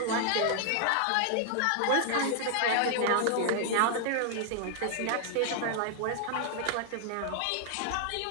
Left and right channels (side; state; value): both; different; correlation 0.00